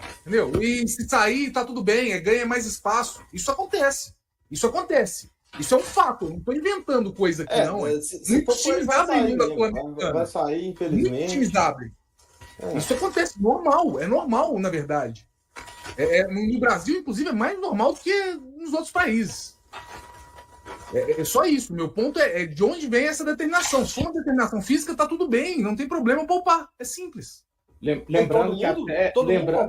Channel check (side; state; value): both; identical; correlation 1.00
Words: Entendeu? E se sair, tá tudo bem, ganha mais espaço. Isso acontece. Isso é um fato. Eu não estou inventando coisa aqui, não. Muitos times abrem da Sul-Americana. Vai sair, infelizmente. Muitos times abrem. Isso acontece, é normal, na verdade. No Brasil, inclusive, é mais normal do que nos outros países. É só isso. Meu ponto é de onde vem essa determinação. Se for uma determinação física, tá tudo bem, não tem problema poupar. É simples. Lembrando